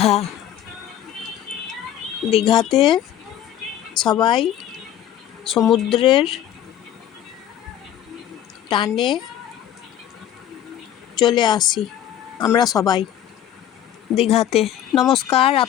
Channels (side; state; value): right; quieter; 11.1 dB